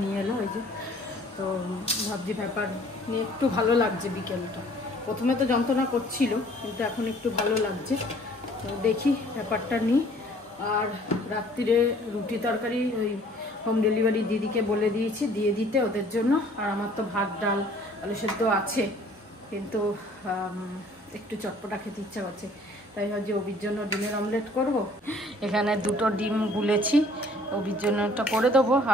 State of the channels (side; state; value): both; normal; correlation 0.55